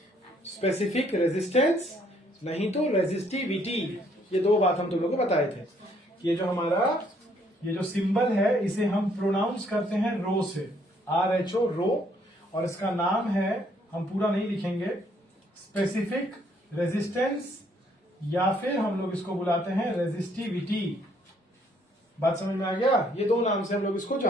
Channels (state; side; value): normal; both; correlation 0.67